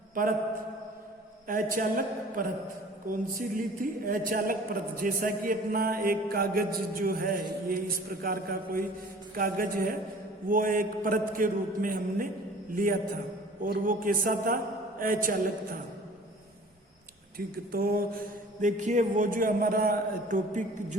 परत, अचालक परत, कौन सी ली थी, अचालक परत। जैसा कि अपना एक कागज जो है, ये इस प्रकार का कोई कागज है, वो एक परत के रूप में हमने लिया था और वो कैसा था, अचालक था। ठीक, तो देखिए वो जो हमारा टॉपिक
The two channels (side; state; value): both; normal; correlation 0.47